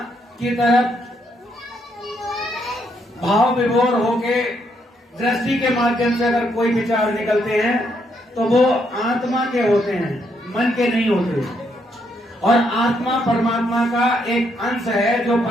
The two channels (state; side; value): normal; both; correlation 0.75